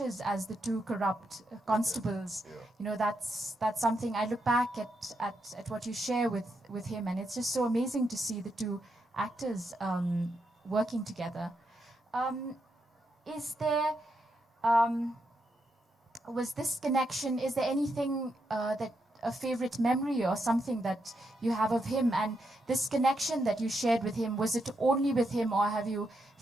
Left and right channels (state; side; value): normal; both; correlation 0.82